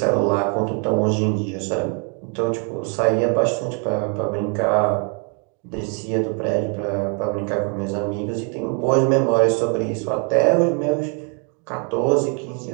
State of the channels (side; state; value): left; quieter; 38.2 dB